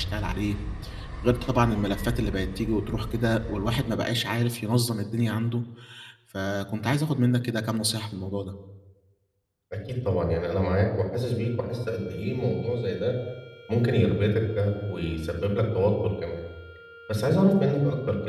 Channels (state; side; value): identical; both; correlation 1.00